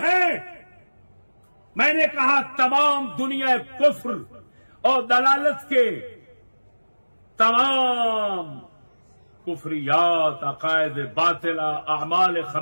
ہیں. میں نے کہا تمام دنیا کفر اور دلالت کے تمام کفریات، عقائد باطلہ، اعمال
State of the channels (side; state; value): both; inverted; correlation -1.00